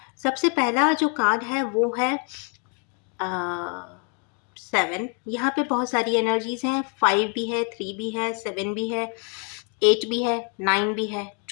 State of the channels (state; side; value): quieter; right; 38.8 dB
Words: सबसे पहला जो कार्ड है वो है 7। यहाँ पे बहुत सारी एनर्जीज हैं। 5 भी है, 3 भी है, 7 भी है, 8 भी है, 9 भी है,